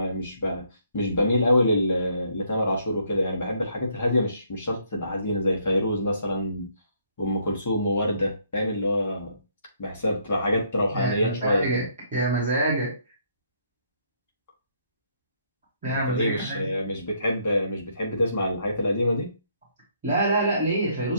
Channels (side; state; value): both; inverted; correlation -0.69